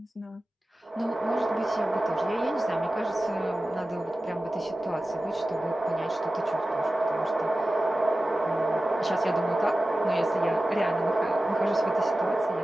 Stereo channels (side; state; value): both; normal; correlation 0.95